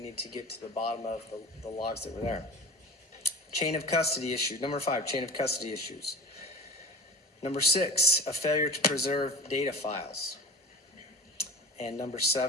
get to the bottom of the logs that were there. Chain of custody issue. Number 5, chain of custody issues. Number 6, a failure to preserve data files. And number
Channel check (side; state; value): both; normal; correlation 0.39